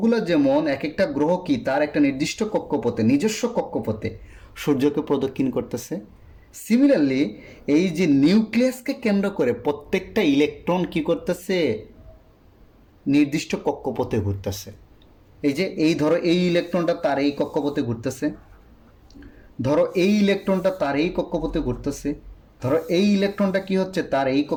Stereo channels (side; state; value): both; identical; correlation 1.00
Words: যেমন এক একটা গ্রহ কি তার একটা নির্দিষ্ট কক্ষপথে, নিজস্ব কক্ষপথে সূর্যকে প্রদক্ষিণ করতেছে, সিমিলারলি এই যে নিউক্লিয়াসকে কেন্দ্র করে প্রত্যেকটা ইলেকট্রন কি করতেছে, নির্দিষ্ট কক্ষপথে ঘুরতেছে। এই যে এই ধরো এই ইলেকট্রনটা তার এই কক্ষপথে ঘুরতেছে, ধরো এই ইলেকট্রনটা তার এই কক্ষপথে ঘুরতেছে, ধরো এই ইলেকট্রনটা কি হচ্ছে, তার এই